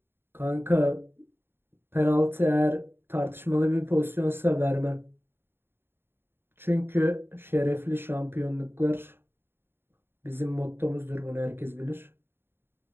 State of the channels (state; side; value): late; left; 0.11 ms